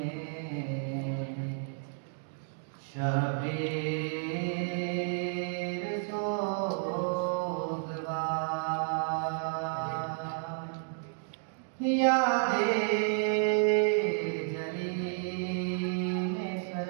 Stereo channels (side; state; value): left; silent; digital silence